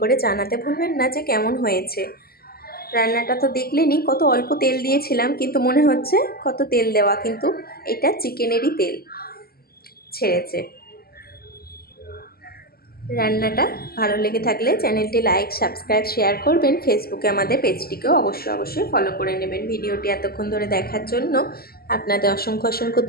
করে জানাতে ভুলবেন না যে কেমন হয়েছে। রান্নাটা তো দেখলেনই, কত অল্প তেল দিয়েছিলাম, কিন্তু মনে হচ্ছে কত তেল দেওয়া, কিন্তু এটা চিকেনেরই তেল ছেড়েছে। রান্নাটা ভালো লেগে থাকলে চ্যানেলটি লাইক, সাবস্ক্রাইব, শেয়ার করবেন। ফেসবুকে আমাদের পেজটিকেও অবশ্যই ফলো করে নেবেন। ভিডিওটি এতক্ষণ ধরে দেখার জন্য আপনাদের অসংখ্য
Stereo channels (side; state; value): right; late; 0.45 ms